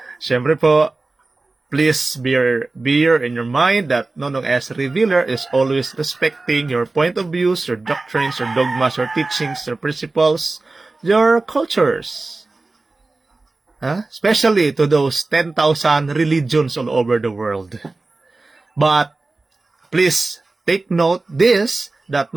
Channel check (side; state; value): left; quieter; 3.4 dB